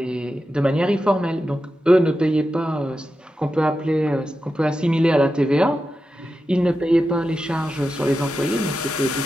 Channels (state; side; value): normal; both; correlation 0.90